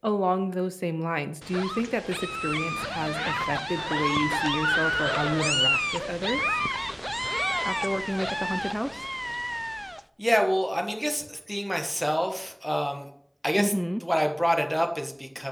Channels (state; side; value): identical; both; correlation 1.00